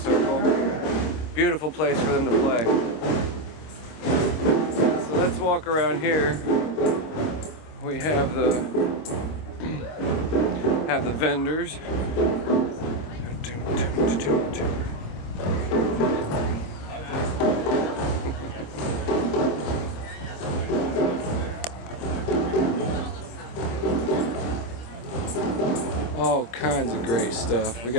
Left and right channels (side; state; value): right; late; 26 ms